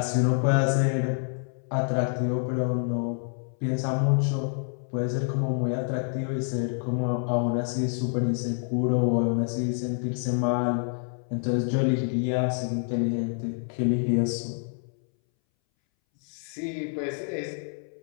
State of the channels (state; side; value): silent; right; 60 dB below the other